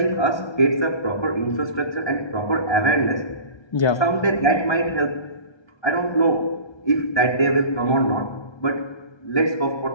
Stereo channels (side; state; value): right; late; 1.3 ms